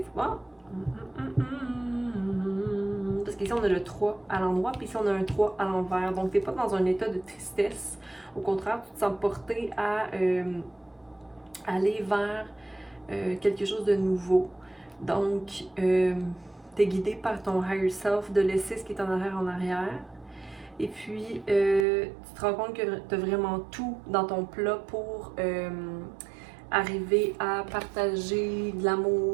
Ah. Parce qu'ici, on a le 3 à l'endroit, puis ici, on a un 3 à l'envers. Donc, t'es pas dans un état de tristesse. Au contraire, tu te sens porté à aller vers quelque chose de nouveau. Donc, t'es guidé par ton higher self de laisser ce qui est en arrière. Et puis, tu te rends compte que tu as vraiment tout dans ton plat pour arriver à partager de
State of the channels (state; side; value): drops out; left; at 21.9 s